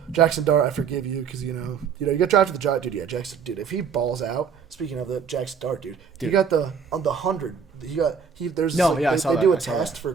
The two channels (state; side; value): quieter; left; 6.4 dB